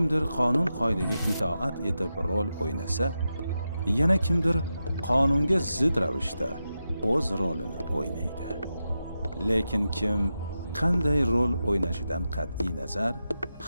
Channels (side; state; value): both; inverted; correlation -0.89